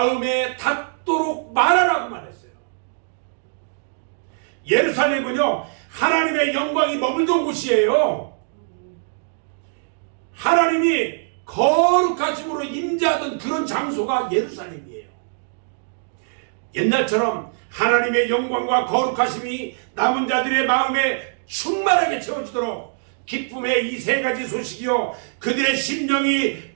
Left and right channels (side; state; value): left; silent; digital silence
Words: 닿도록 말하라고 말했어요. 예루살렘은요 하나님의 영광이 머물던 곳이에요. 하나님이 거룩하심으로 임재하던 그런 장소가 예루살렘이에요. 옛날처럼 하나님의 영광과 거룩하심이 남은 자들의 마음에 충만하게 채워지도록 기쁨의 이 3가지 소식이요 그들의 심령이